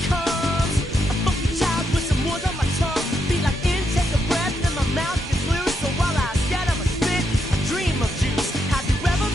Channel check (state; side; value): normal; both; correlation 0.80